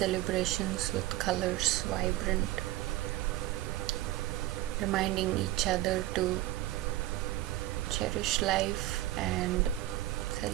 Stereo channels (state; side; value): quieter; left; 15.9 dB